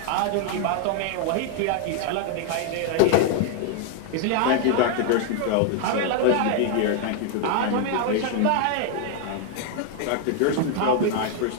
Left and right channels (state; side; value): different; both; correlation 0.00